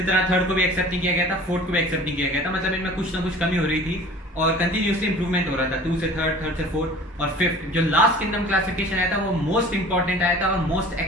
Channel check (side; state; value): both; normal; correlation 0.44